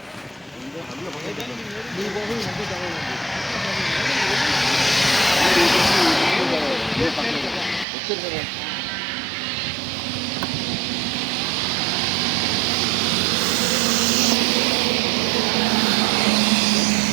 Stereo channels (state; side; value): drops out; left; at 7.9 s